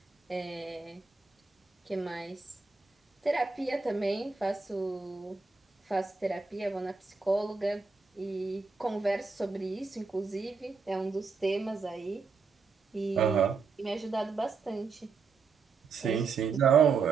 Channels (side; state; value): left; quieter; 4.8 dB